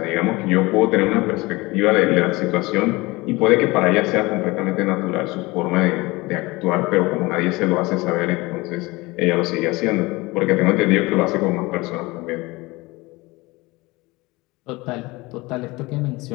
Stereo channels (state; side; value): quieter; right; 22.4 dB